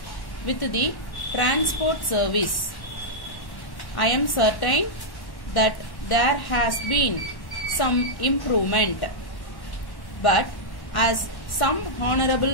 with the transport service. I am certain that there has been some improvement, but as some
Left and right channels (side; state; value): right; late; 1.1 ms